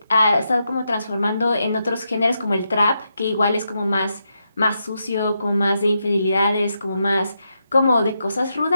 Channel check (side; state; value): both; inverted; correlation -0.84